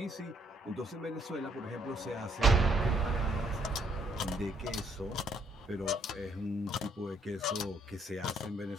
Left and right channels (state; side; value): normal; both; correlation 0.69